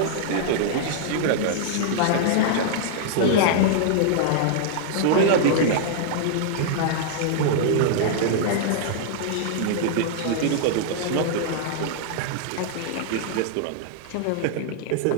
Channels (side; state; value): both; different; correlation -0.01